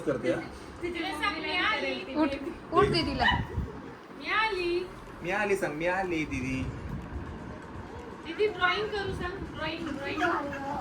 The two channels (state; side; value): identical; both; correlation 1.00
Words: करते. उठ उठ दीदीला. मी आली सांग. मी आली दीदी. दीदी ड्रॉइंग करू सांग. ड्रॉइंग